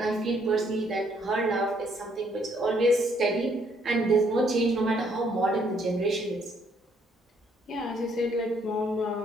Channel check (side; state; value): both; normal; correlation 0.68